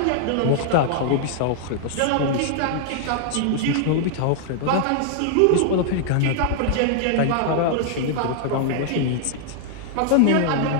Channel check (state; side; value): different; both; correlation -0.01